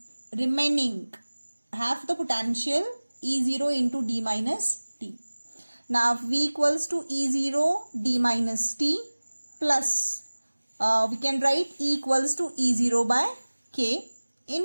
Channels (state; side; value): inverted; both; correlation -1.00